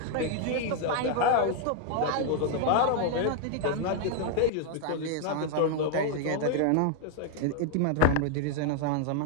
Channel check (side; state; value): both; different; correlation 0.00